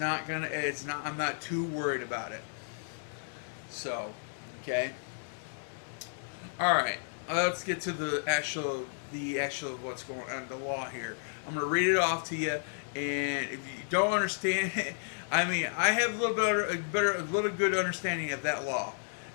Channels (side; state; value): right; silent; digital silence